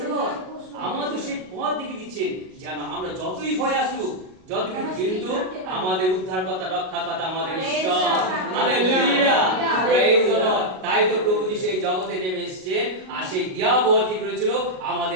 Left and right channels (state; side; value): late; left; 38 ms